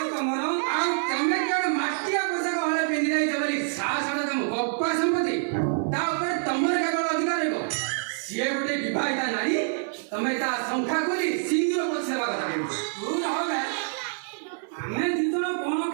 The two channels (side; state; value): left; silent; 61 dB below the other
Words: तुमर तमें क्या मटिया पोशाक हले पिंधि जाइछ बोली साहस तुम गप्पा संपत्ति तमर केवल अधिकार हो सी गोटे विवाहिता नारी तमें ता संख्या खोली सिंदूर पछेवा कथा तू रहे आम दिजन कौन